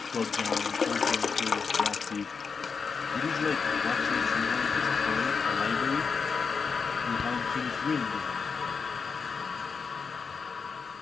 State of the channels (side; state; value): right; quieter; 5.4 dB